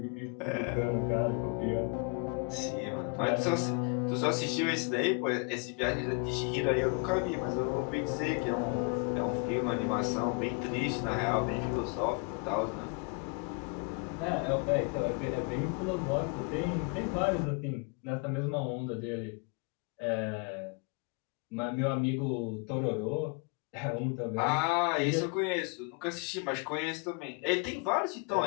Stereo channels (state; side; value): quieter; right; 33.2 dB